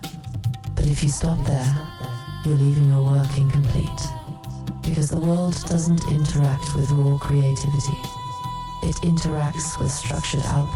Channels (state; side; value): identical; both; correlation 1.00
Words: But if you stop there, you're leaving your work incomplete, because the world doesn't interact with raw creativity. It interacts with structured